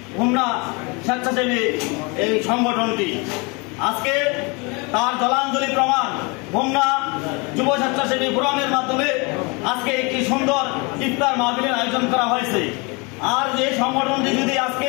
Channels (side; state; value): right; quieter; 29.3 dB